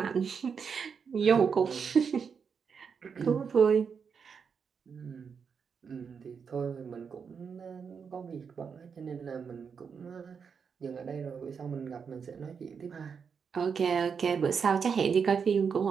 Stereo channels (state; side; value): quieter; left; 6.3 dB